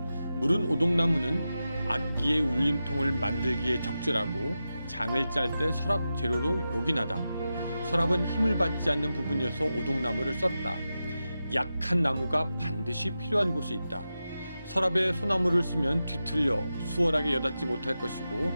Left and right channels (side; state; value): both; inverted; correlation -0.91